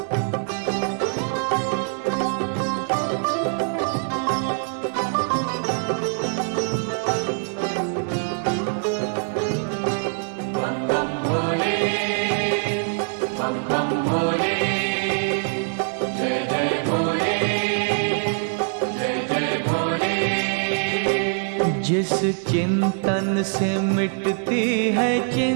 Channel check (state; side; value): silent; left; 63 dB below the other